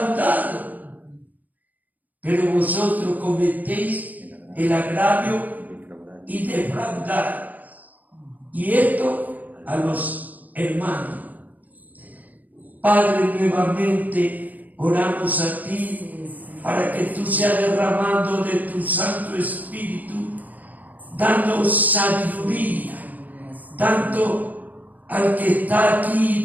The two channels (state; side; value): late; left; 0.080 ms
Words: Pero vosotros cometéis el agravio y defraudar. Y esto a los hermanos. Padre, nuevamente oramos a ti para que tú seas derramando de tu Santo Espíritu, dando sabiduría, tanto al que está